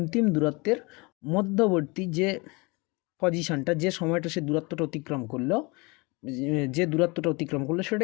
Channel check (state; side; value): quieter; right; 27.1 dB